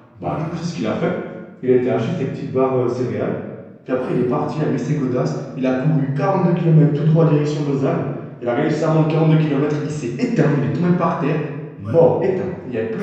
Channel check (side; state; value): both; identical; correlation 1.00